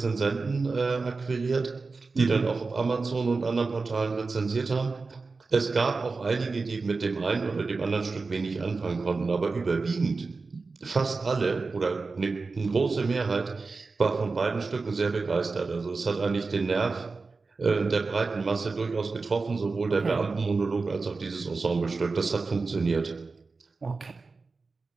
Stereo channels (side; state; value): left; quieter; 4.1 dB